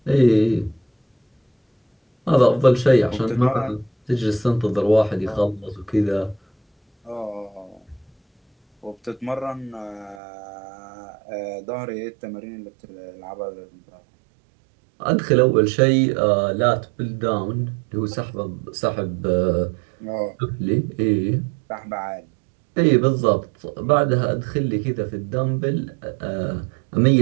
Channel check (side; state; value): left; drops out; at 10.2 s